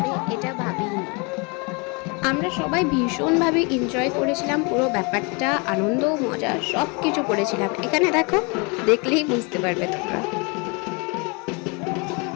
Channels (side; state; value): right; quieter; 31.3 dB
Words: এটা ভাবিনি। আমরা সবাই ভীষণভাবে এনজয় করেছিলাম পুরো ব্যাপারটা, আনন্দ মজা সব কিছু করেছিলাম। এখানে দেখো, দেখলেই বুঝতে পারবে তোমরা।